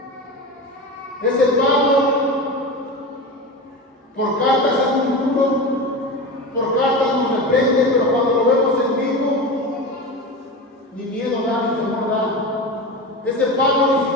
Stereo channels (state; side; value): normal; both; correlation 0.25